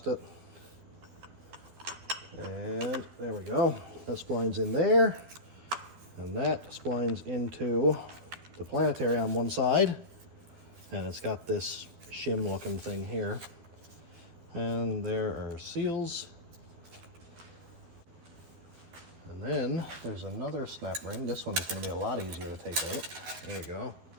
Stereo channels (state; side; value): late; left; 12 ms